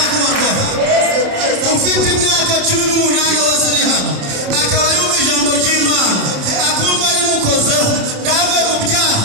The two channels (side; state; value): left; late; 27 ms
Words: Ufite imyaka 18 wese ari hano akaba yumva ijambo ry'Imana akumva rimukozeho ndave mu byaha,